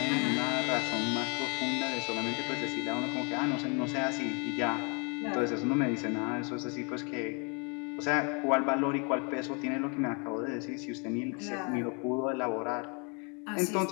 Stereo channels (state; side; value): quieter; right; 34.7 dB